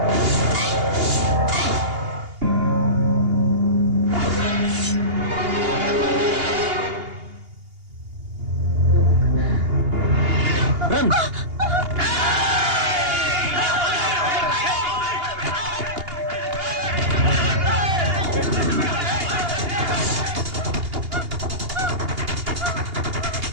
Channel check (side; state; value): left; late; 2.8 ms